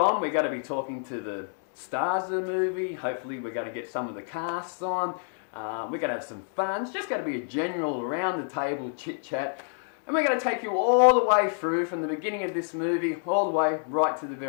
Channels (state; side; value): silent; right; 59 dB below the other